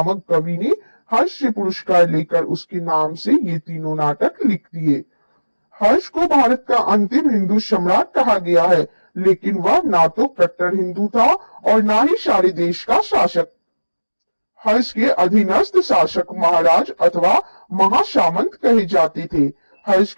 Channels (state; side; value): inverted; both; correlation -1.00